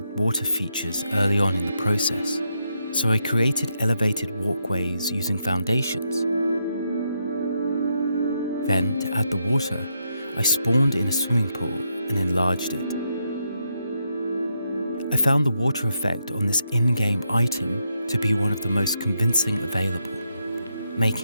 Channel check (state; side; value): inverted; both; correlation -0.81